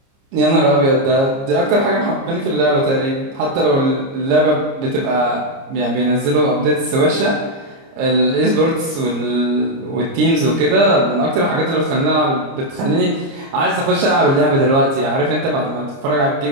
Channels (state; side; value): late; left; 30 ms